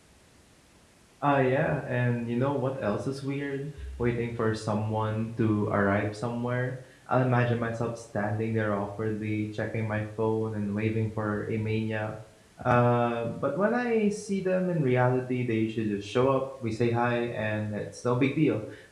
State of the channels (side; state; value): both; identical; correlation 1.00